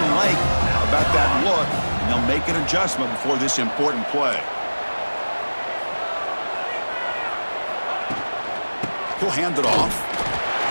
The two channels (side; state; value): both; inverted; correlation -1.00